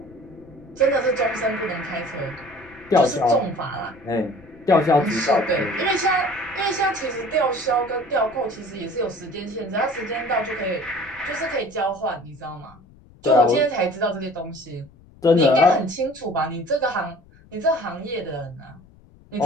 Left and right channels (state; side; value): noise; left; rumble, 25 dB below the sound